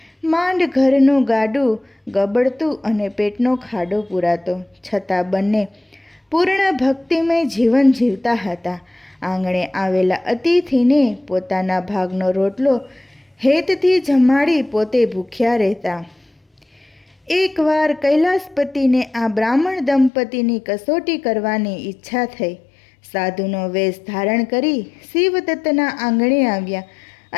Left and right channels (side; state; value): right; drops out; at 20.1 s